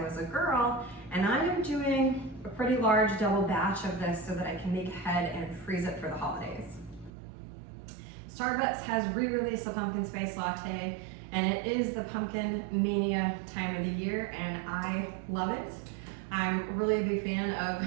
a girl, and I am doing a pretty large double batch of this so that I can make ahead and freeze it for the holidays. Starbucks has re-released a pumpkin spice latte, and it is the pumpkin mania time of the year, and I love it. I'm really a big fan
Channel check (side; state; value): left; drops out; at 7.1 s